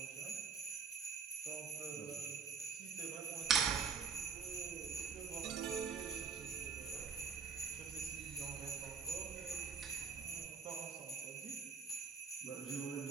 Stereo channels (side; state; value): left; quieter; 5.8 dB